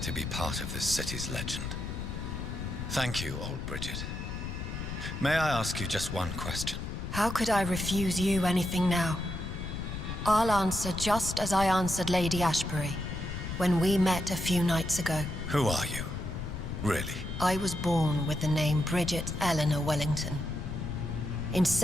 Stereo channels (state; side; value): noise; left; rumble, 6 dB below the sound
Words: to be part of this city's legend. Thank you, old Bridget. May I ask you just one question? How could I refuse you anything now? I'll answer just as I answered Lady Ashbury when we met a few nights ago. Who are you? Really? I was born with the name Bridget Eleanor Wellington. In